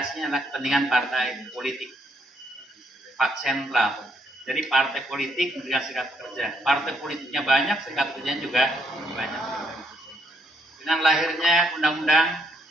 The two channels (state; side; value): normal; both; correlation 0.74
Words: adalah kepentingan partai politik. Pak sentral. Jadi partai politik mendirikan serikat pekerja. Partai politiknya banyak, serikat pekerjanya juga banyak. Dengan lahirnya undang-undang